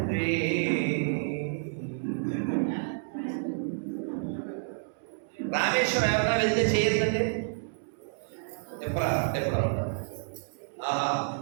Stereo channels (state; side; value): silent; left; 58 dB below the other